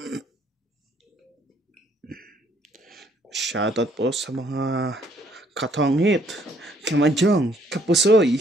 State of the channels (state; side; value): normal; both; correlation 0.65